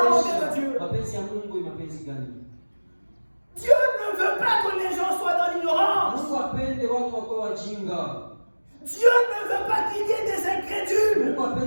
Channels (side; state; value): both; inverted; correlation -1.00